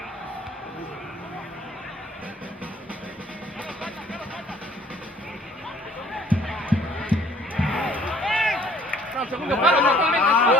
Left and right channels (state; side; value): normal; both; correlation 0.58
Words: Segundo palo, totalmente.